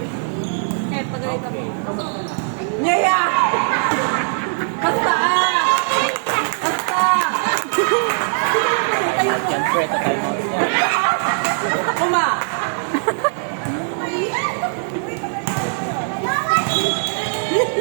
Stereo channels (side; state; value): left; silent; digital silence